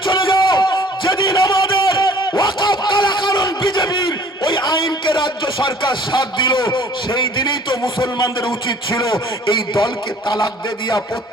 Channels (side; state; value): both; normal; correlation 0.54